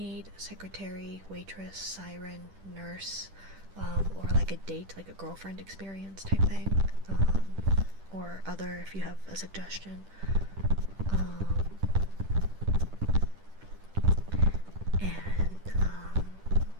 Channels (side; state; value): left; late; 10 ms